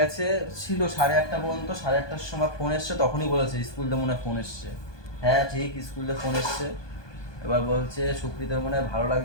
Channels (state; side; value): late; right; 1.2 ms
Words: ছিল 8:30 পর্যন্ত। 8:30টার সময় ফোন এসছে, তখনই বলেছে স্কুল থেকে মনে হয় ফোন এসছে। হ্যাঁ ঠিক, স্কুল থেকে ফোন এসছে। এবার বলছে সুপ্রীতার মনে হয় ভালো